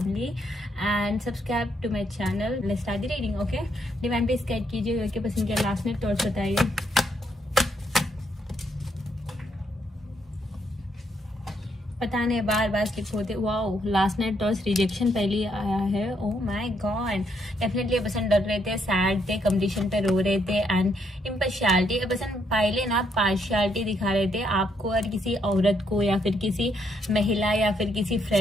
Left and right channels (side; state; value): both; normal; correlation 0.74